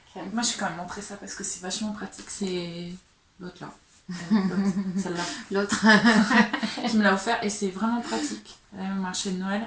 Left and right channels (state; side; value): identical; both; correlation 1.00